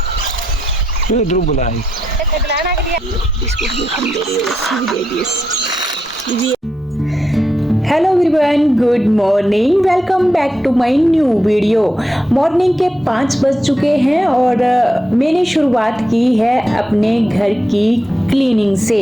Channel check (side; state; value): both; normal; correlation 0.84